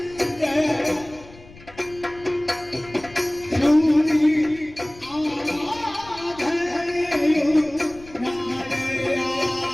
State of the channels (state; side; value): noise; left; rumble, 21 dB below the sound